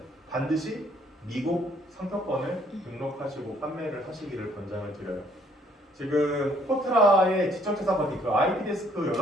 반드시 미국 상표권을 등록하시고 판매를 하시기를 권장을 드려요. 지금 포트라의 지적재산 받기 그 IP데스크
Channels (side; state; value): both; normal; correlation 0.64